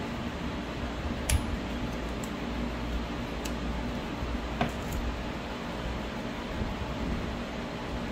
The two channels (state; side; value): identical; both; correlation 1.00